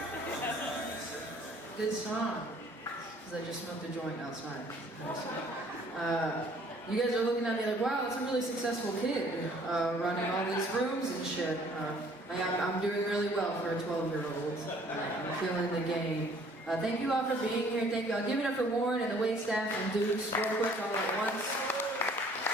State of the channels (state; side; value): normal; both; correlation 0.57